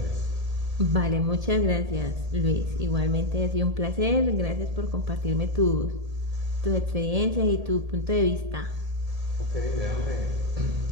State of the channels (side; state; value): left; late; 1.7 ms